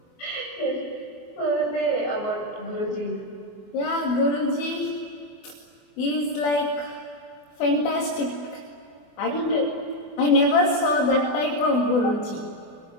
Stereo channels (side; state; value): right; late; 24 ms